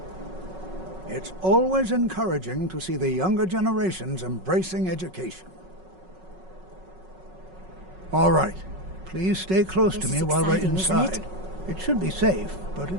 It's always encouraging to see the younger generations embracing education. All right. Please stay close to This me is while we're exciting, isn't inside. It should be safe, but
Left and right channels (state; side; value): late; left; 5.4 ms